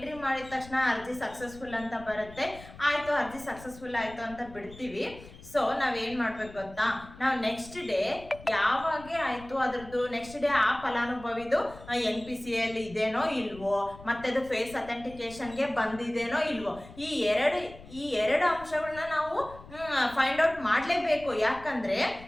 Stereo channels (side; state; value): left; noise; rumble, 18 dB below the sound